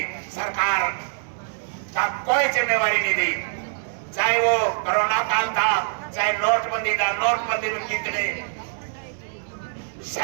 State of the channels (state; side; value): silent; left; 62 dB below the other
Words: सरकार का कोई जिम्मेवारी नहीं दी। चाहे वो कोरोना काल था, चाहे नोटबंदी था, नोटबंदी में कितने